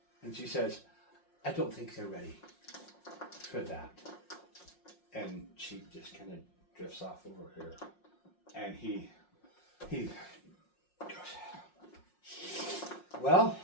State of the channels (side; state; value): right; late; 5.6 ms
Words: And she says, I don't think they're ready for that. And she just kind of drifts off over here. And he goes, well,